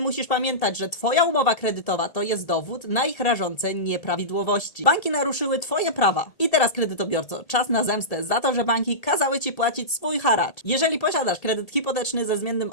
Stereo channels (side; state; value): right; late; 1.8 ms